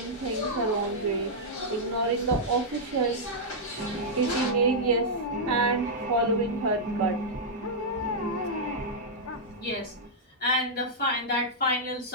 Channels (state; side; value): normal; both; correlation -0.08